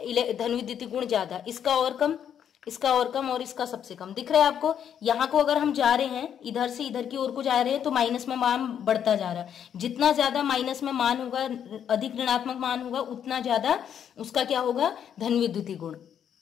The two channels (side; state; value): right; quieter; 8.9 dB